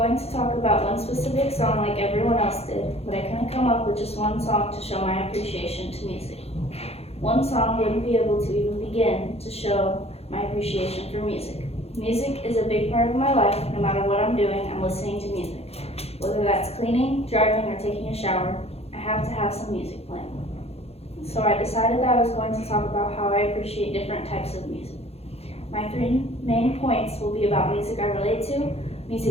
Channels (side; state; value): right; late; 0.29 ms